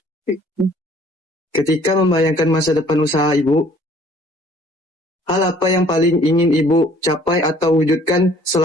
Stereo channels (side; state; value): both; normal; correlation 0.56